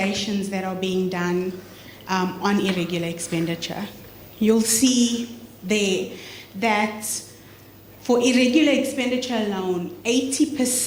that are being done on irregular expenditure. You'll see there that for irregular expenditure alone,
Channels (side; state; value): both; identical; correlation 1.00